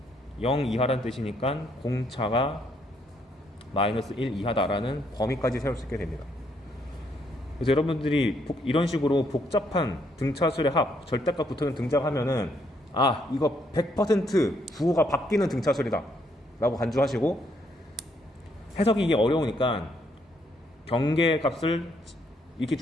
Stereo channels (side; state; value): both; normal; correlation 0.72